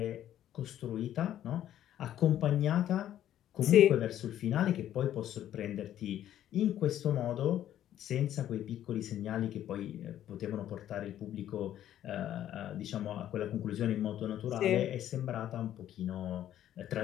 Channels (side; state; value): right; quieter; 11.6 dB